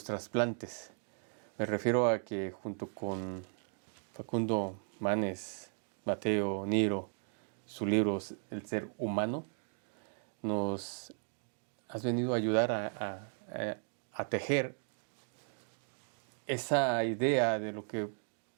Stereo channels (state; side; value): silent; left; 54 dB below the other